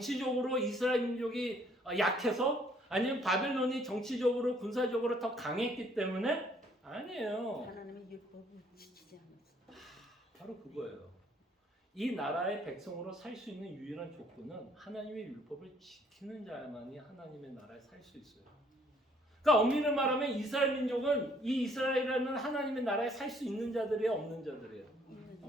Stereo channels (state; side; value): normal; both; correlation 0.63